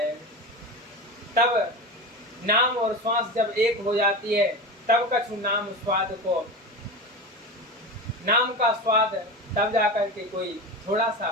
तब नाम और श्वास जब एक हो जाती है, तब कछु नाम का स्वाद तब जाकर के कोई थोड़ा सा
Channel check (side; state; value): both; normal; correlation 0.25